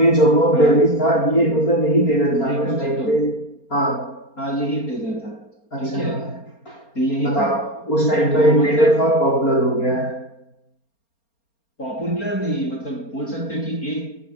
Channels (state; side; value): late; right; 4.3 ms